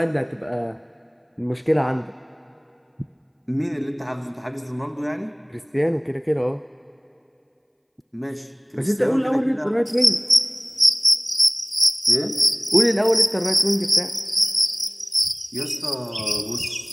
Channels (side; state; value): both; identical; correlation 1.00